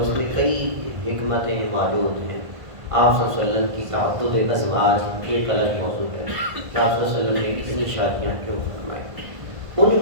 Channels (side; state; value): left; late; 1.5 ms